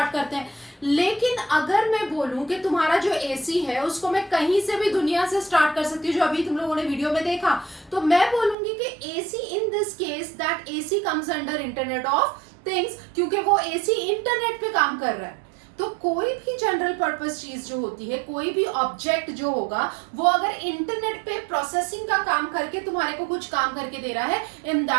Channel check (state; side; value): drops out; left; at 8.6 s